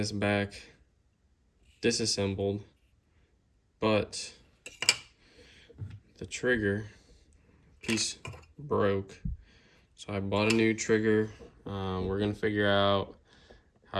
back disassembled, but the trigger piece broke. So I bought a new trigger. We're gonna figure out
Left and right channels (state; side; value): identical; both; correlation 1.00